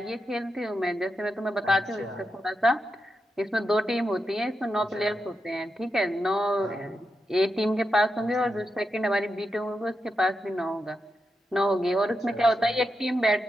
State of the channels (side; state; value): both; normal; correlation 0.87